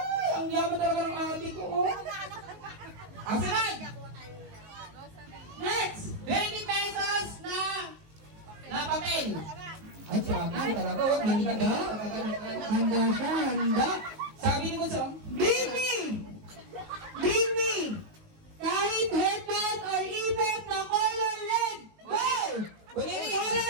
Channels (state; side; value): late; left; 19 ms